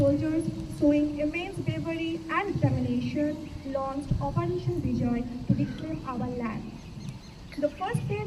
showing immense bravery and determination, launched Operation Vijay to reclaim our land. The first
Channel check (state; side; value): identical; both; correlation 1.00